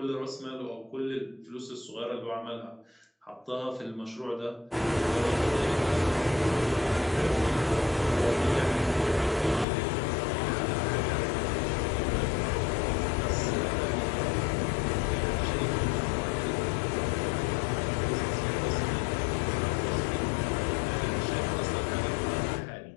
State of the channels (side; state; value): right; drops out; at 9.7 s